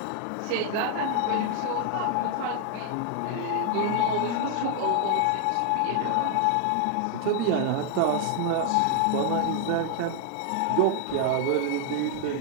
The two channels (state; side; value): different; both; correlation 0.00